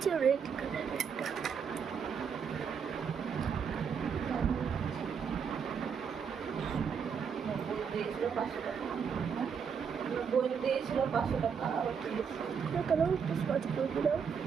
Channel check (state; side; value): quieter; left; 6.7 dB